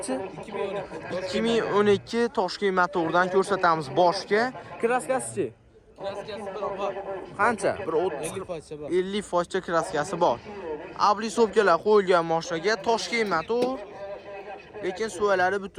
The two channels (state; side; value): identical; both; correlation 1.00